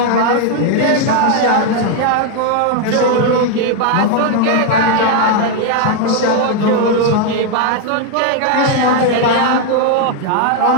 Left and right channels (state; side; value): different; both; correlation 0.00